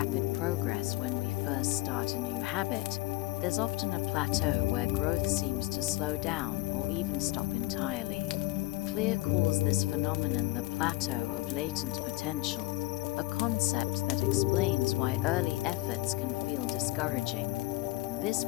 progress when we first start a new habit, there's often a plateau where growth seems to slow down or even stop entirely. Clear calls this phenomenon the plateau of latent potential, a concept that explains why early efforts can feel discouraging. This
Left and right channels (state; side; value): quieter; right; 20.2 dB